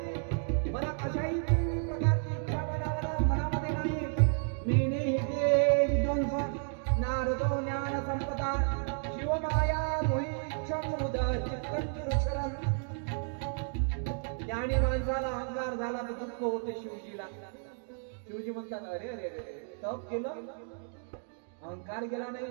मला कशाही प्रकारची इच्छा मनामध्ये नाही. मीने हे विध्वंस नारदो ज्ञान संपदा शिवमाया मोहिच्छम उदर चित्तंचुरुचरम. ज्ञानी माणसाला अहंकार झाला तर दुःख होते शिवजीला. शिवजी म्हणतात अरे अरे अरे तप केलं, अहंकार गेला नाही.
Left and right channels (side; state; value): left; silent; 56 dB below the other